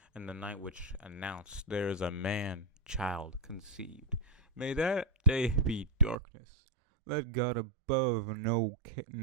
and the night which announced there is a man-child conceived. May that day be darkness. Let God above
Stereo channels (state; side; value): drops out; left; at 6.2 s